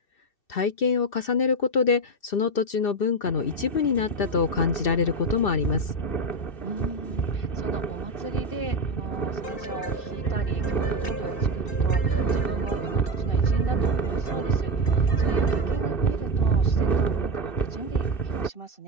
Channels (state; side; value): late; right; 2.6 ms